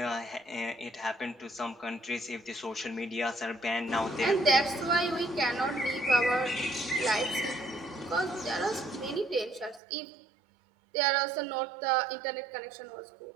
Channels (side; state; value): left; drops out; at 9.8 s